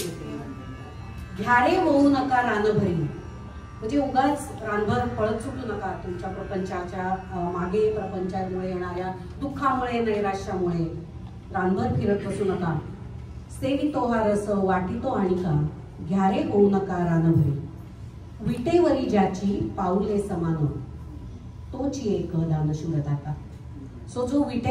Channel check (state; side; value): identical; both; correlation 1.00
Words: ते घ्यारे होऊ नका रानभरी. म्हणजे उगाच रानभर पळत सुटू नका तुमच्या प्रपंचाच्या मागे, प्रपंचामुळे येणाऱ्या दुःखामुळे नैराश्यामुळे रानभर फिरत बसू नका. सेवितो हा रस वाटितो आणि का घ्यारे होऊ नका रानभरी. विटेवरी ज्याची पाऊले समान तोची एक दानशूर दाता. सो जो